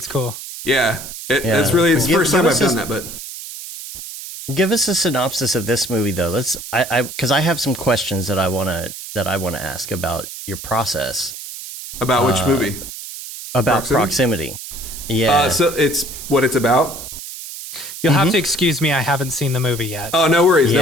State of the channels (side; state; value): right; noise; hiss, 11 dB below the sound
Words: cool. Yeah. It's the first time I've done that, but give us a synopsis of this movie, though. Because I have some questions that I want to ask about your process. About which movie? About Proximity. Yeah. So it's what it's about. You'll have to excuse me. I haven't seen the movie yet. Oh, no worries. No